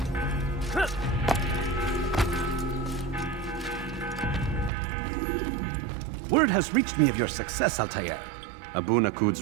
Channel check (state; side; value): drops out; left; at 4.7 s